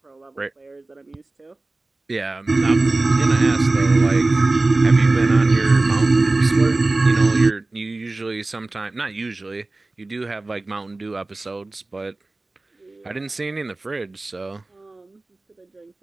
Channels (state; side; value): quieter; left; 3.1 dB